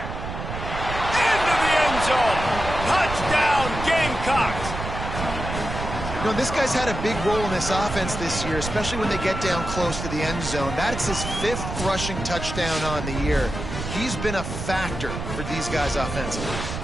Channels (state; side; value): noise; right; rumble, 6 dB below the sound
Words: Into the end zone. Touchdown, Gamecocks. You know, this guy's had a big role in this offense this year, especially when they get down close to the end zone. That's his 5th rushing touchdown on the year. He's been a factor for these guys offensively.